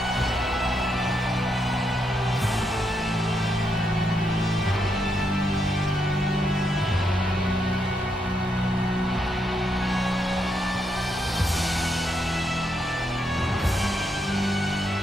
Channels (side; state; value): both; normal; correlation 0.80